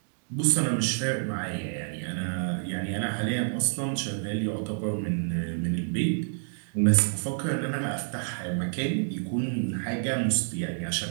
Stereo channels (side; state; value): left; silent; digital silence